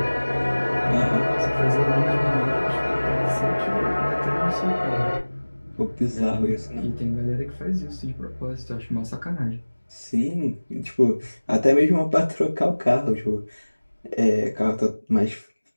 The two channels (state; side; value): inverted; both; correlation -1.00